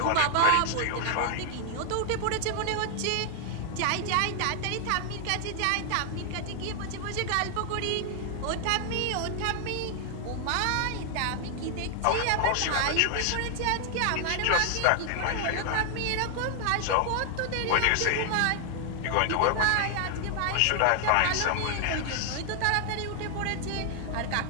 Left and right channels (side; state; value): both; different; correlation 0.00